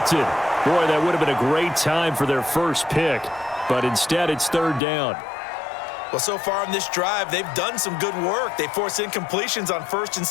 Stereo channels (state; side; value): drops out; right; at 4.8 s